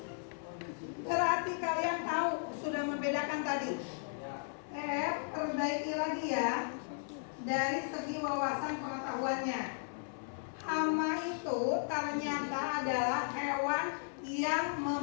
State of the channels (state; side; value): silent; right; 54 dB below the other